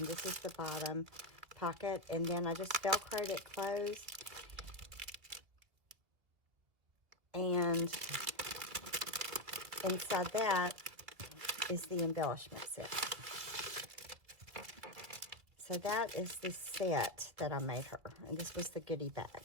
this is the bottom pocket. And then I just Velcroed it closed. And inside that is the embellishment set. So that is the set that I made her, and this was the goodie bag.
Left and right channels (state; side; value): late; left; 2.4 ms